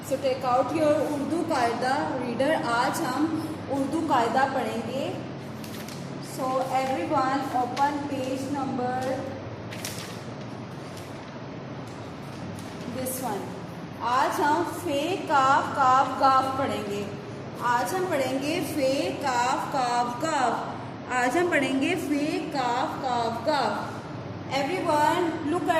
So take out your Urdu Qaida reader. आज हम उर्दू कायदा पढ़ेंगे. So everyone open page number this one. आज हम फे काफ काफ गाफ पढ़ेंगे. आज हम पढ़ेंगे फे काफ काफ गाफ. आज हम पढ़ेंगे फे काफ काफ गाफ. Everyone look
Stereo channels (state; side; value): identical; both; correlation 1.00